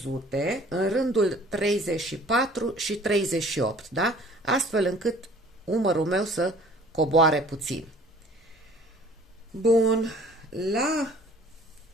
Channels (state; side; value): normal; both; correlation 0.51